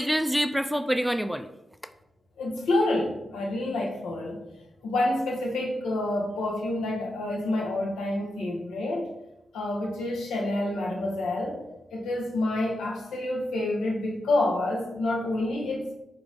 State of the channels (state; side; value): normal; both; correlation 0.88